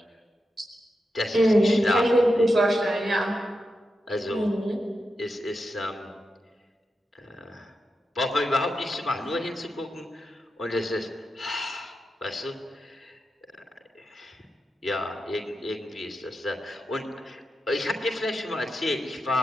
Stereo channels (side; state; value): both; normal; correlation 0.88